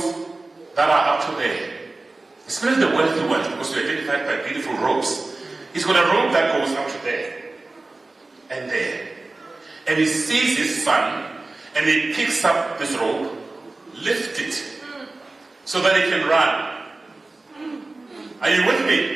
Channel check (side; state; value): left; quieter; 3.2 dB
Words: that are up to there, especially the wealthy ones, because we're identified by beautiful robes, he's got a robe that goes up to there and there. And he sees his son, and he picks up this robe, lifts it, so that he can run. Are you with